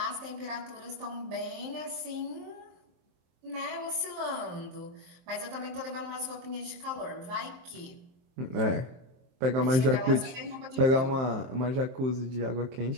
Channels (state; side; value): late; left; 23 ms